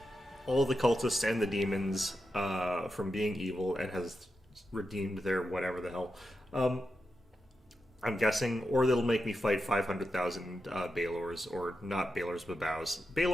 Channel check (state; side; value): normal; both; correlation 0.88